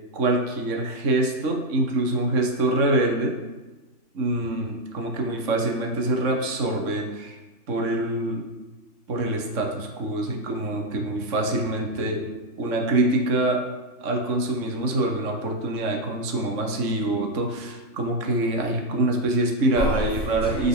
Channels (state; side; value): late; left; 3.6 ms